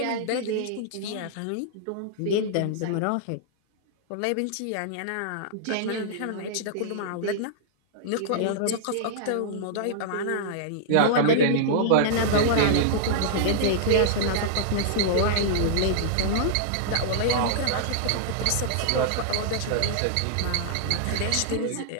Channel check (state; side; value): different; both; correlation -0.01